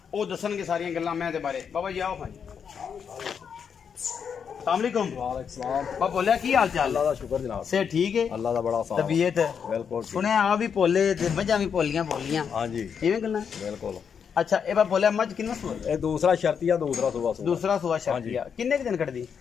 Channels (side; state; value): right; quieter; 7.0 dB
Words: वो दसणगे सारियां गल्लां मैं दे बारे। बाबा जी आओ भाई अस्सलामुअलैकुम। बाबा बोलिया की हाल चाल? अल्लाह दा शुक्र जनाब से ठीक है, अल्लाह दा बड़ा साथ तबीयत बिल्कुल सुने आ भी भोले ते मझां भी भोलियां हां जी इवें गल्लां बिल्कुल। अच्छा ए बाबा बोलिया मझ किन्ना सुआ? ए दूसरा शर्तिया दूसरा सुबह शर्तिया किन्ने के दिन कटदी?